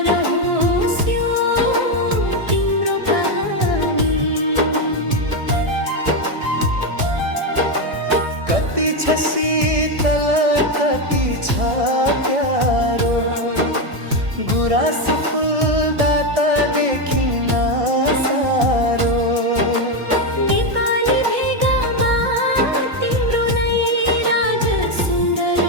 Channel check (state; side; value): late; left; 1.6 ms